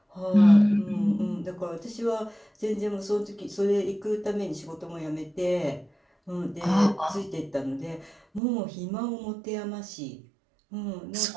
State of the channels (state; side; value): drops out; left; at 8.4 s